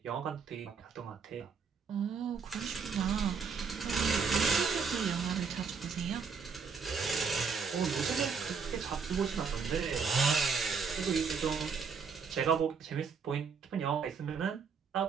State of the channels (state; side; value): quieter; left; 5.7 dB